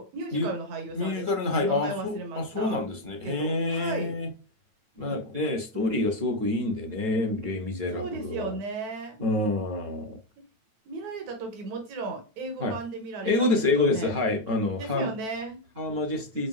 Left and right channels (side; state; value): left; late; 9.1 ms